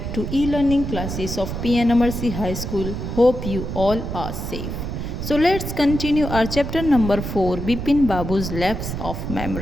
to e-learning classes of P.N.AMERSEY High School. Hope you all are safe. So let's continue our chapter number 4, Bipin Babu's Lapse of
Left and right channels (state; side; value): noise; right; rumble, 5 dB below the sound